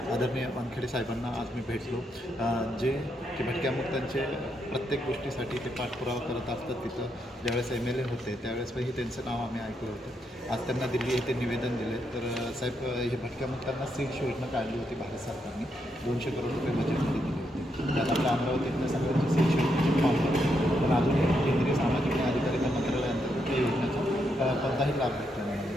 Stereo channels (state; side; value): normal; both; correlation 0.80